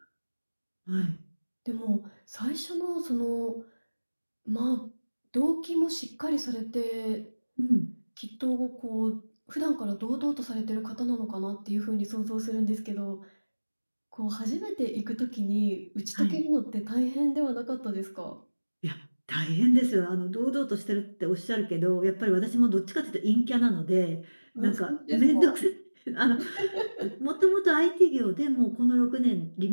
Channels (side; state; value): both; inverted; correlation -1.00